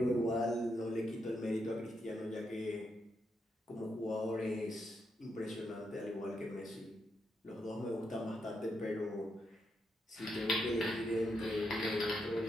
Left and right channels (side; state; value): both; normal; correlation 0.81